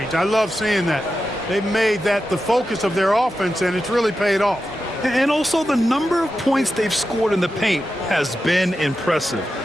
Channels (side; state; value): both; normal; correlation 0.90